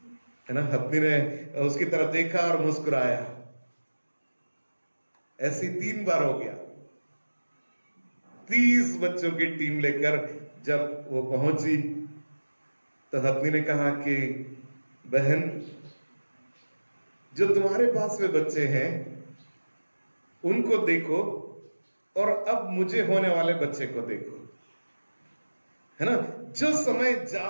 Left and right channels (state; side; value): inverted; both; correlation -1.00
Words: है ना। हथनी ने उसकी तरफ देखा और मुस्कुराया। ऐसी 3 बार हो गया। 30 बच्चों की टीम लेकर जब वो पहुंची तो हथनी ने कहा कि बहन, जो तुम्हारे पास में बच्चे हैं उनको देखो और अब मुझे होने वाले बच्चे को देखो, है ना। जो समय